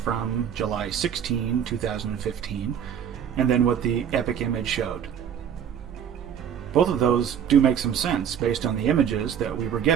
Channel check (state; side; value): quieter; left; 8.5 dB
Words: July 16, 2015, and then what the epic image showed. Both of those do make some sense based on the images that we were